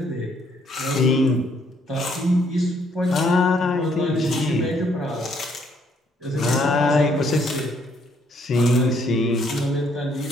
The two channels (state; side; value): normal; both; correlation 0.68